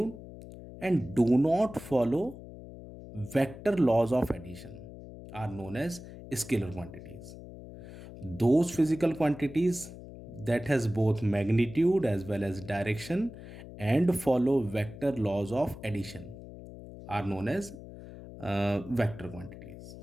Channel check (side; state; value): left; noise; hum, 14 dB below the sound